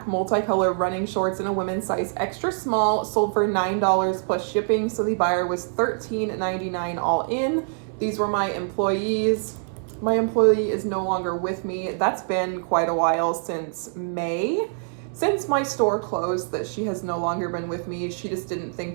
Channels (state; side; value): silent; left; digital silence